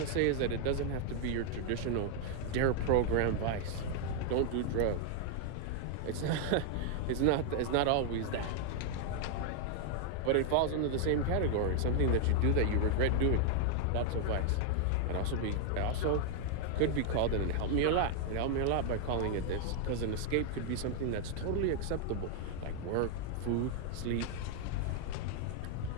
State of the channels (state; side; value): different; both; correlation 0.00